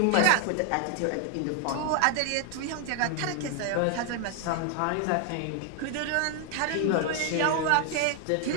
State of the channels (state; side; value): different; both; correlation 0.00